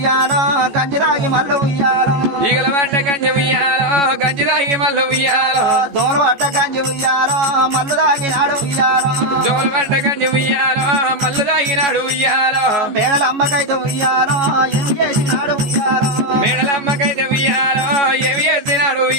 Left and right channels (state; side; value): late; left; 14 ms